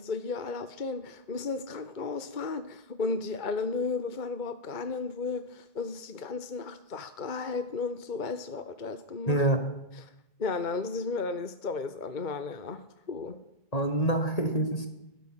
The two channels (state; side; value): late; right; 2.2 ms